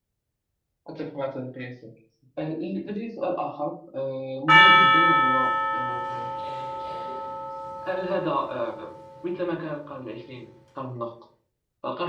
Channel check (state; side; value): identical; both; correlation 1.00